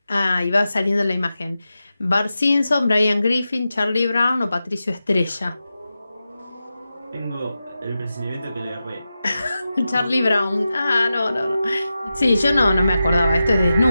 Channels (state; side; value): inverted; both; correlation -0.92